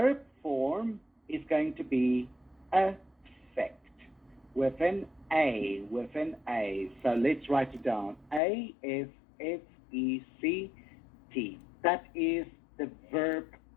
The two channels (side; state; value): right; drops out; at 8.4 s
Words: form is going to be affect with an A. So let's write it down. A-F-F-E-C-T. That is the verb